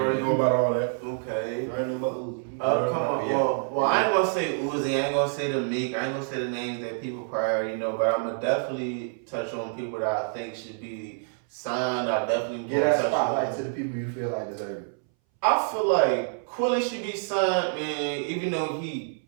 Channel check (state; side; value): silent; left; 60 dB below the other